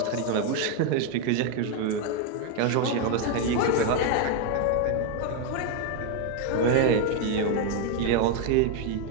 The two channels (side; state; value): both; different; correlation 0.01